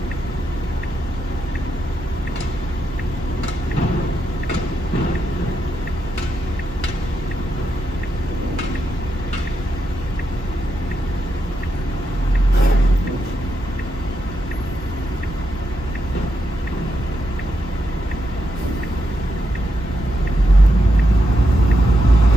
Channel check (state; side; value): normal; both; correlation 0.84